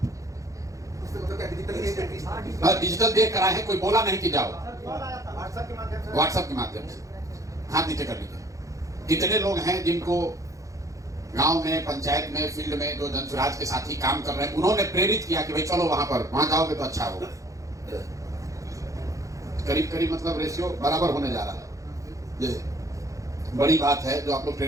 डिजिटल देख कर आए हैं, कोई बोला नहीं कि जाओ, व्हाट्सएप के माध्यम से हाथ नीचे कर लीजिए। कितने लोग हैं जिनको गांव में, पंचायत में, फील्ड में जो जन स्वराज के साथी काम कर रहे हैं, उन्होंने प्रेरित किया कि भाई चलो वहां पर, वहां जाओगे तो अच्छा होगा। करीब करीब मतलब रेशियो बराबर होने जा रहा है। ये बड़ी बात है जो आप लोग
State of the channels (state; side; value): late; left; 0.16 ms